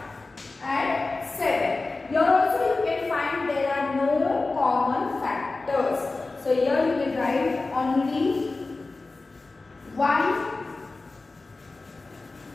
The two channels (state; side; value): quieter; right; 3.5 dB